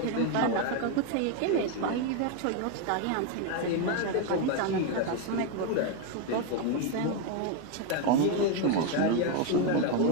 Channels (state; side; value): different; both; correlation 0.02